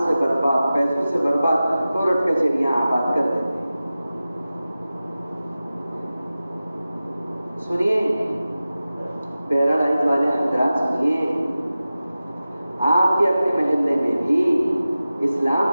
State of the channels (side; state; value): both; inverted; correlation -0.95